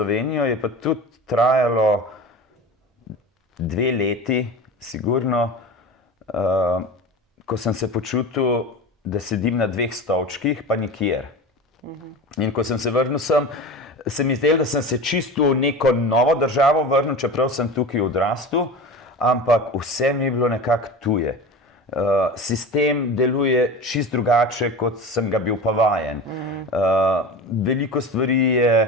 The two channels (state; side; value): normal; both; correlation 0.31